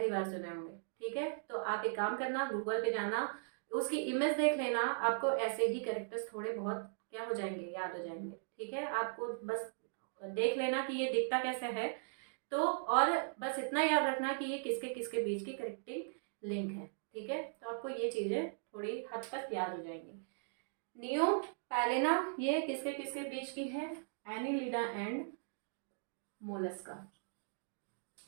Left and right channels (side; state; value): left; silent; digital silence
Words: बार सुने होंगे। ठीक है, तो आप एक काम करना, गूगल पे जाना, उसकी इमेज देख लेना, आपको ऐसे ही कैरेक्टर्स थोड़े बहुत क्या हो जाएंगे? याद हो जाएंगे। ठीक है, आपको बस देख लेना कि ये दिखता कैसे है, तो और बस इतना याद रखना कि ये किसके किसके बीच की कनेक्टिंग लिंक है। ठीक है, तो आपको ये चीज़ें थोड़ी हद तक याद हो जाएंगी। नियो पैलेना ये किसके किसके बीच की है? Annelida and Mollusca.